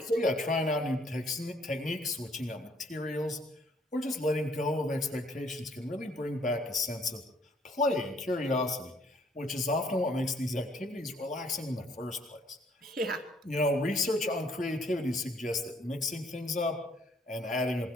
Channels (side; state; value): both; normal; correlation 0.64